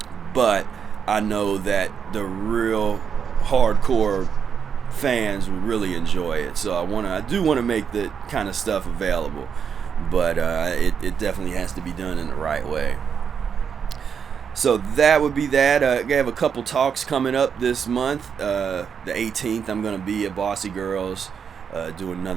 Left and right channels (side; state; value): left; quieter; 7.0 dB